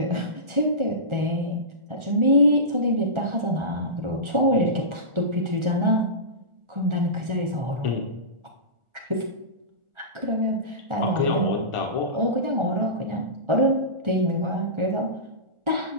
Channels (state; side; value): late; left; 1.3 ms